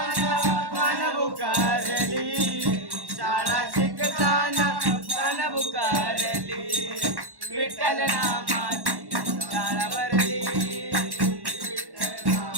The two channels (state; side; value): late; left; 1.1 ms